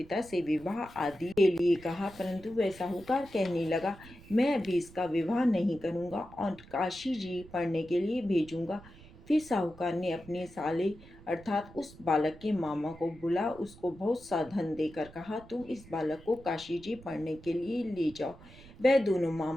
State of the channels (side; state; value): right; noise; rumble, 20 dB below the sound